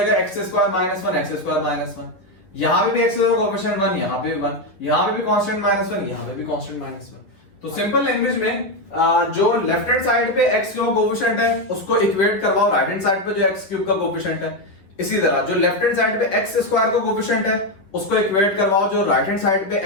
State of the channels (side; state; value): right; late; 11 ms